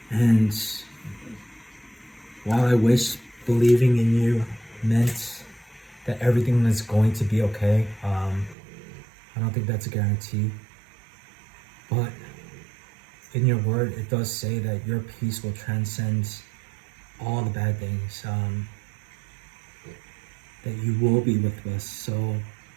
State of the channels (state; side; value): drops out; left; at 8.6 s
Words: And while I wish believing in you meant that everything is going to be okay, I don't think that's a guarantee. But in your word, it does say that your peace will transcend all the bad things, that you will be with us. So,